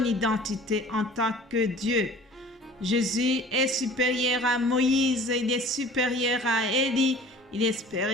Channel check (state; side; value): normal; both; correlation 0.46